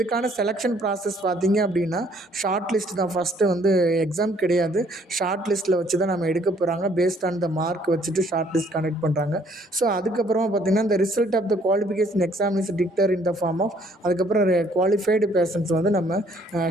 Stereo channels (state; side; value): normal; both; correlation 0.63